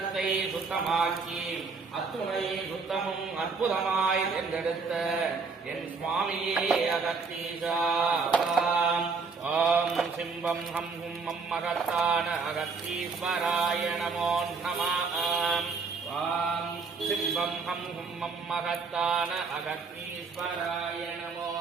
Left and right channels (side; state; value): left; quieter; 4.7 dB